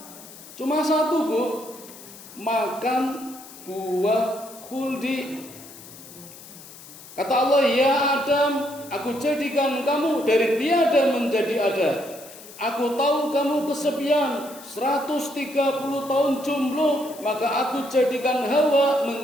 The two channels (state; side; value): noise; left; hiss, 18 dB below the sound